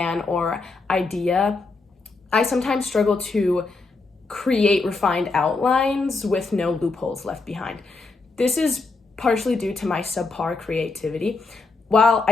or idea, I sometimes struggle to create refined outlines with no loopholes left behind. This is partially due to my subpar creativity. While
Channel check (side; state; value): right; quieter; 3.8 dB